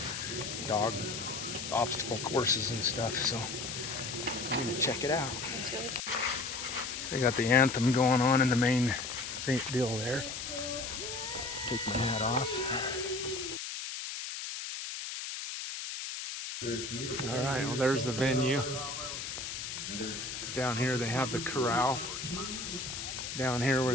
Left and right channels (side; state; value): left; noise; hiss, 6 dB below the sound